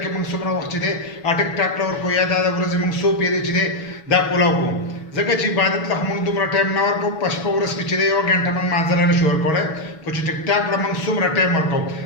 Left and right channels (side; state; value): right; late; 6.2 ms